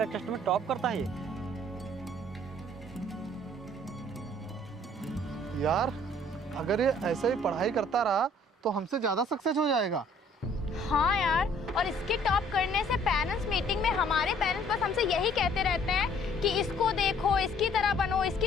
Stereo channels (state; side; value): normal; both; correlation 0.58